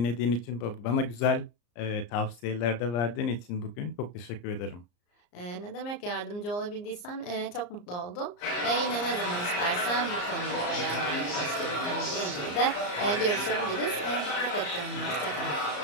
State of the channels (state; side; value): late; right; 34 ms